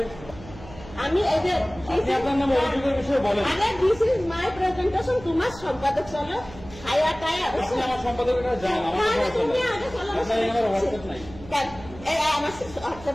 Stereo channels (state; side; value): noise; right; hum, 17 dB below the sound